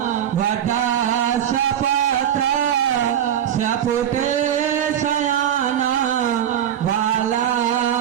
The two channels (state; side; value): quieter; left; 10.0 dB